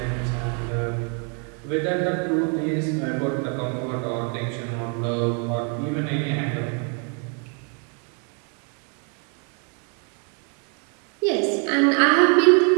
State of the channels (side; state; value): left; quieter; 38.8 dB